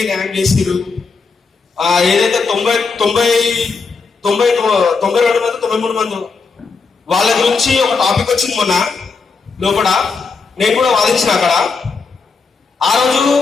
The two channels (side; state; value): right; quieter; 4.7 dB